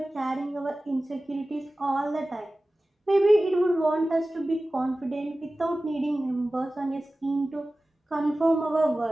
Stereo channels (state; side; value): normal; both; correlation 0.96